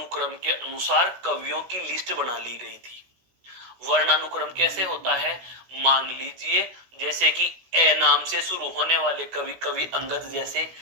के अनुसार कवियों की लिस्ट बना ली गई थी। वर्णानुक्रम कैसे होता है? मान लीजिए जैसे कि ए नाम से शुरू होने वाले कवि अंगद जैसे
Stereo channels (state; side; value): late; left; 16 ms